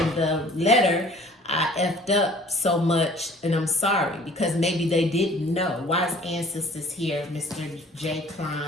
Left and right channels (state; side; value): normal; both; correlation 0.51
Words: the letter, I effed up so much and I'm sorry, because maybe they didn't know. Why is Ancestors here, Mr. J.